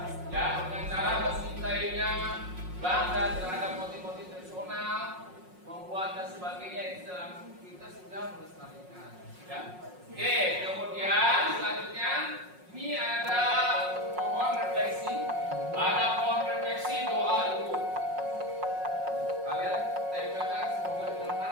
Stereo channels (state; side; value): late; left; 5.5 ms